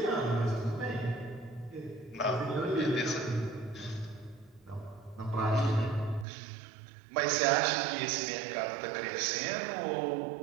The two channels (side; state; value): left; drops out; at 6.2 s